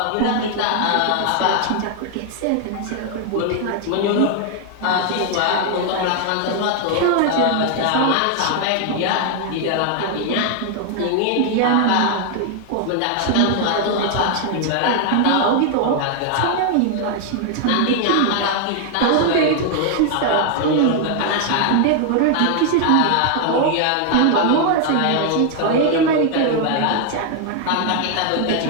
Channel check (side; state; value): both; different; correlation 0.00